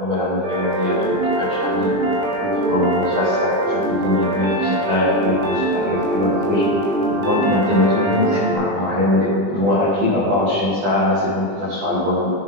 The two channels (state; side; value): late; left; 20 ms